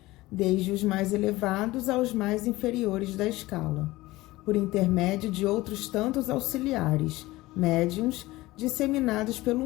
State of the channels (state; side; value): quieter; right; 19.0 dB